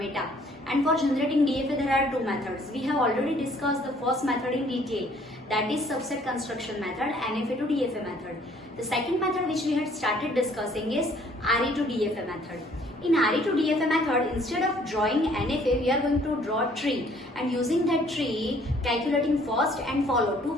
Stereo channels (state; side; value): normal; both; correlation 0.60